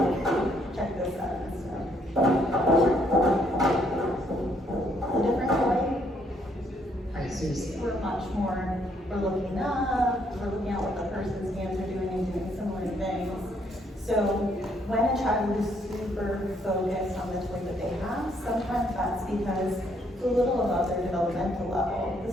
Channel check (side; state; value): both; normal; correlation 0.70